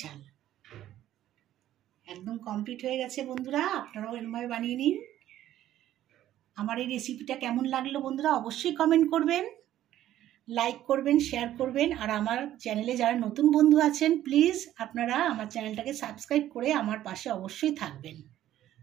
একদম কমপ্লিট হয়ে গেছে বন্ধুরা। আপনারাও এরকমভাবে বানিয়ে নিন। আমার এই রেসিপিটা কেমন লাগলো বন্ধুরা অবশ্যই কমেন্ট করবেন, লাইক করবেন, শেয়ার করবেন। আর আমার চ্যানেলে যারা নতুন বন্ধু আছেন প্লিজ আপনারা আমার চ্যানেলটাকে সাবস্ক্রাইব করে আমার পাশে অবশ্যই থাকবেন।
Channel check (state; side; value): quieter; left; 12.8 dB